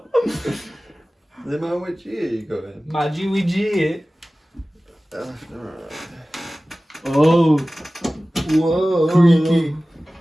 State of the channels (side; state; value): both; normal; correlation 0.97